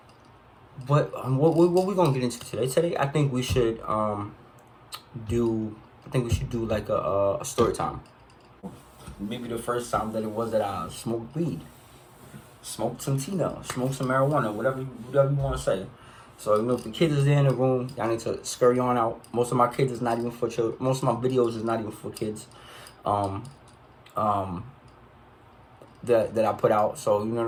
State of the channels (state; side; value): identical; both; correlation 1.00